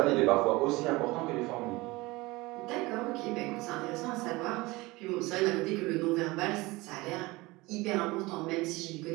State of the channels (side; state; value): left; quieter; 21.9 dB